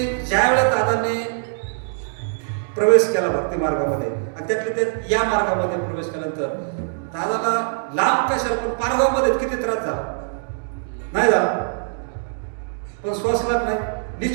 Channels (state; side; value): silent; left; digital silence